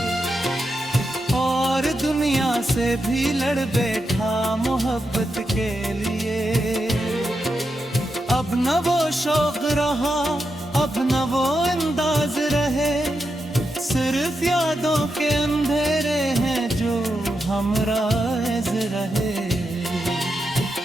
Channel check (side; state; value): both; normal; correlation 0.86